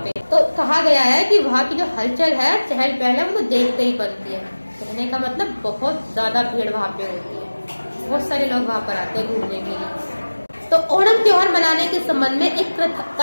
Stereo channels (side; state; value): both; inverted; correlation -1.00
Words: तो कहा गया है कि वहाँ की जो हलचल है, चहल पहल है, वो देखते ही बनती है। कहने का मतलब बहुत ज्यादा भीड़ वहाँ पे होती है, बहुत सारे लोग वहाँ पर आते हैं घूमने के लिए। तो ओणम त्योहार मनाने के संबंध में एक